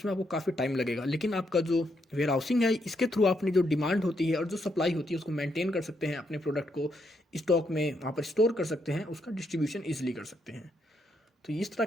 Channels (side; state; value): both; normal; correlation 0.78